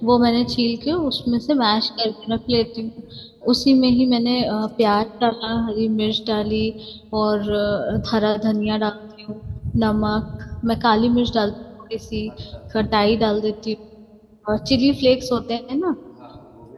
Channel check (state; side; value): identical; both; correlation 1.00